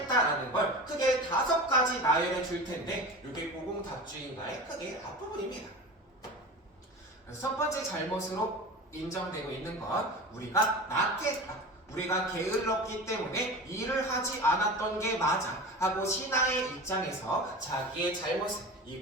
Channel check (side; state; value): both; normal; correlation 0.32